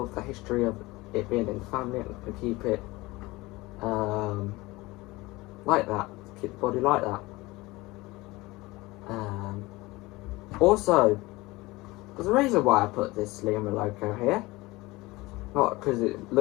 the history of it being in the family, I'm going to keep it like that, keep the body like that. Also, there's a reason why I put this Lima Loco here. Not because it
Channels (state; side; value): quieter; right; 21.3 dB